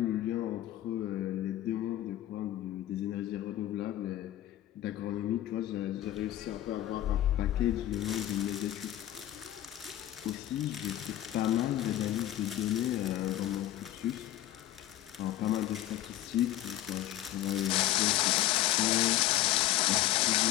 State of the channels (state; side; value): quieter; right; 13.7 dB